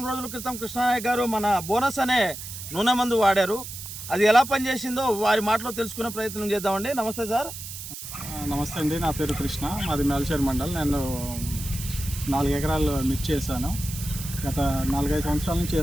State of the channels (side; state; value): right; noise; hiss, 10 dB below the sound